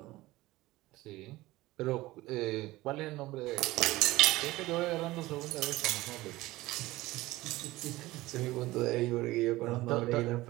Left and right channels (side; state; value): left; quieter; 18.5 dB